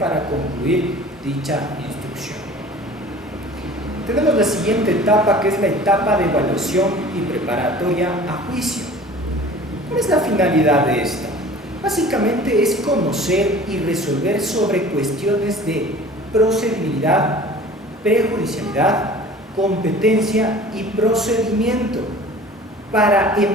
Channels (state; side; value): normal; both; correlation 0.44